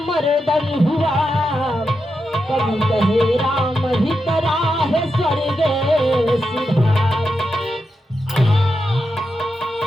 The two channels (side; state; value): both; normal; correlation 0.87